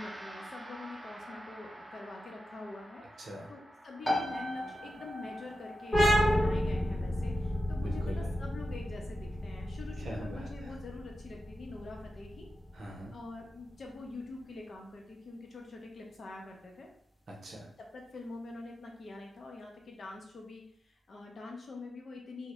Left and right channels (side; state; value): both; normal; correlation 0.90